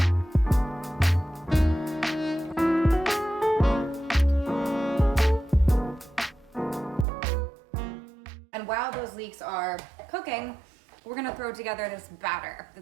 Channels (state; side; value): drops out; left; at 7.1 s